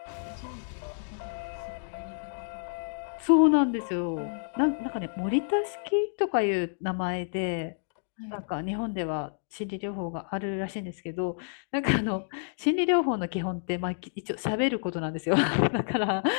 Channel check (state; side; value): silent; right; digital silence